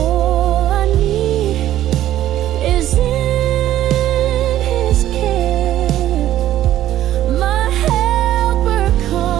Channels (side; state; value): left; quieter; 12.9 dB